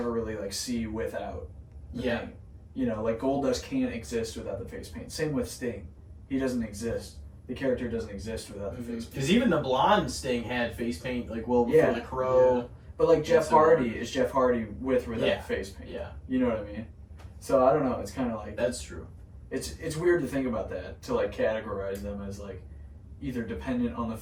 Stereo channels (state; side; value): identical; both; correlation 1.00